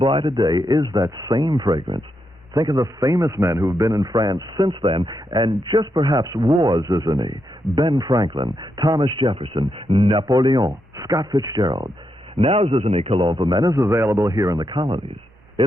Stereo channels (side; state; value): both; normal; correlation 0.83